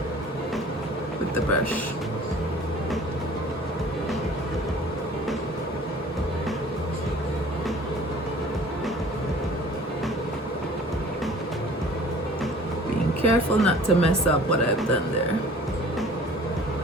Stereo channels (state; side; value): normal; both; correlation 0.48